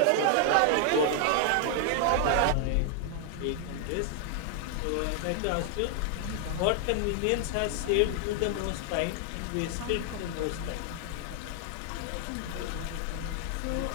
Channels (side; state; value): both; different; correlation 0.00